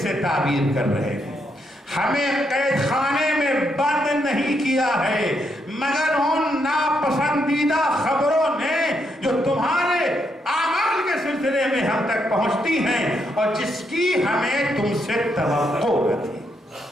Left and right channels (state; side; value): normal; both; correlation 0.78